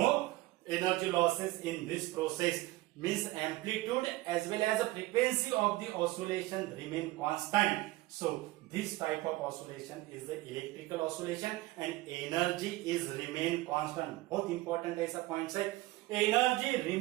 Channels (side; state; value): left; quieter; 19.0 dB